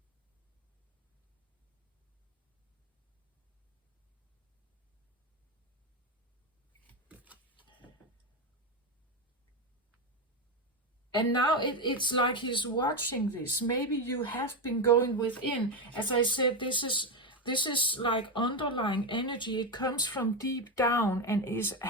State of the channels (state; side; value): normal; both; correlation 0.11